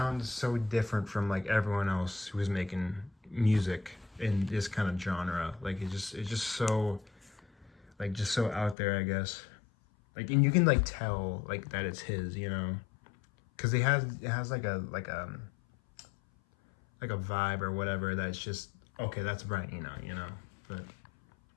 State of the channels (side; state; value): right; drops out; at 8.8 s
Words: so different from like everyone else who is making music in this kind of genre. Like it's just so, like, just so out there, I guess. Like, and you can like tell like that it's his, you know, because it has like a vibe or whatever that's just, okay, that's Brian Eno, you know. But